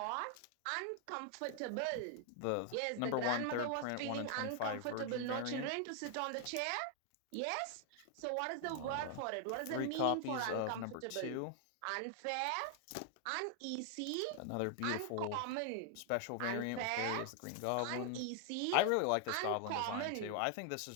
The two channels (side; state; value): both; different; correlation 0.00